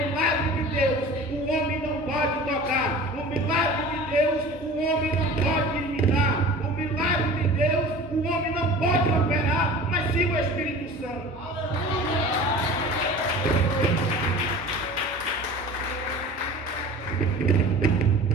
de Deus o homem não pode tocar. O milagre de Deus o homem não pode imitar. O milagre de Deus o homem não pode operar, mas sim o Espírito Santo.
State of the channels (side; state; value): both; normal; correlation 0.40